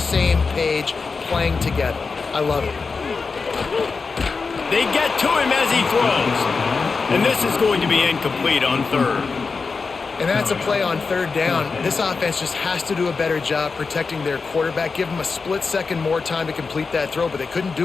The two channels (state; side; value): quieter; right; 4.6 dB